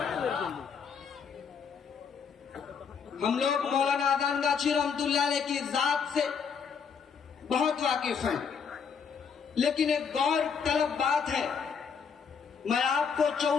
ہم لوگ مولانا اذان گاچھی رحمت اللہ علیہ کی ذات سے بہت واقف ہیں، لیکن ایک غور طلب بات ہے. میں آپ کو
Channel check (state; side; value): quieter; right; 6.4 dB